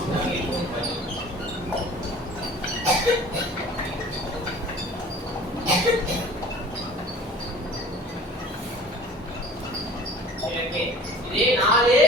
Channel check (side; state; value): both; normal; correlation 0.46